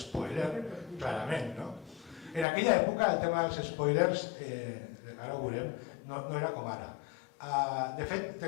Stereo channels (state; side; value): drops out; right; at 2.5 s